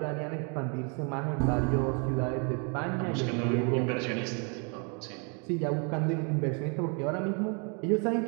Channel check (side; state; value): left; quieter; 35.8 dB